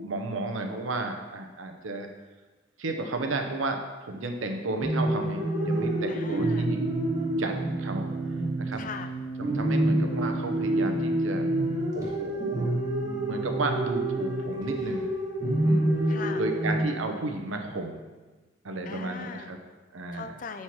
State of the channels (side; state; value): both; normal; correlation 0.61